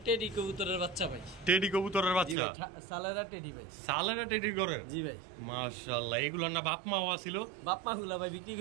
টেডি কবুতরের বাচ্চা ভাই, টেডি কবুতরের বাচ্চা, সালেরা টেডি ভাই, সালেরা টেডি করে। জি ভাই মাশাআল্লাহ, এগুলোর না বাপ মাও ছিল, বাপ মা গুলা ভাই বিক্রি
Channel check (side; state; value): left; drops out; at 2.4 s